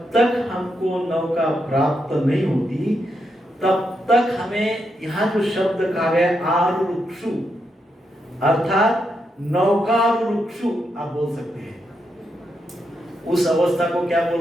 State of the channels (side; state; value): both; normal; correlation 0.82